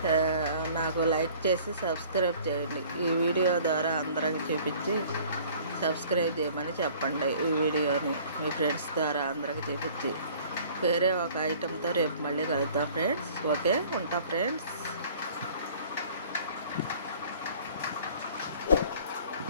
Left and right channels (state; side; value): inverted; both; correlation -0.52